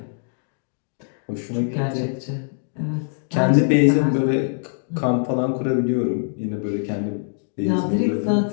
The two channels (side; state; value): right; silent; digital silence